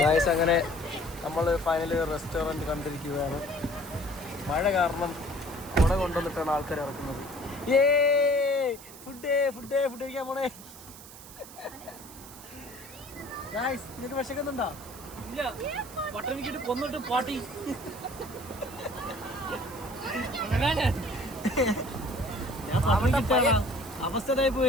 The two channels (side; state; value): right; noise; hiss, 17 dB below the sound